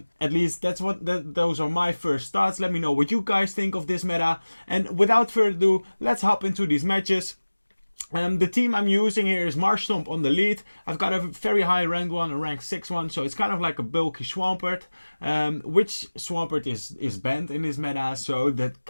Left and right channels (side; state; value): both; inverted; correlation -1.00